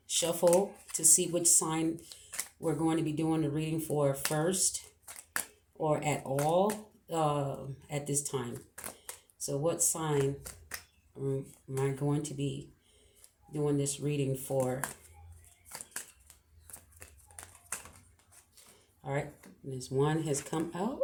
shuffle to see which sign we're going to be doing the reading for first or at all at this time. So, what sign am I going to be doing this reading for? All right. This one has come out.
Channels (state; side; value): identical; both; correlation 1.00